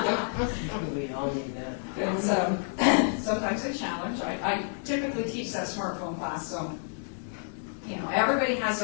We all need that. It's sometimes a challenge. I typically teach that smartphone class, so everybody has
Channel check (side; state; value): right; silent; digital silence